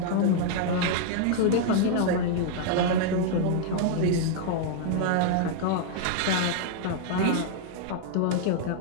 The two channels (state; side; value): different; both; correlation -0.01